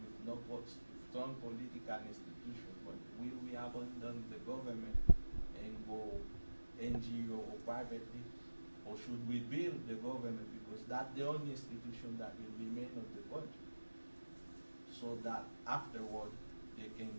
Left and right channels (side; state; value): both; inverted; correlation -1.00